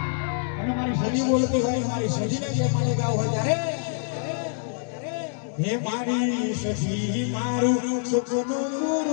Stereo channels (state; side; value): silent; right; digital silence